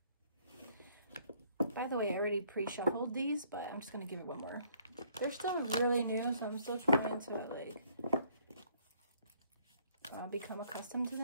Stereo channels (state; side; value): inverted; both; correlation -0.64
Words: By the way, I already pre-shuffled these, but I'm just going to give it one more. They're still really new, so I'm still trying to become accustomed to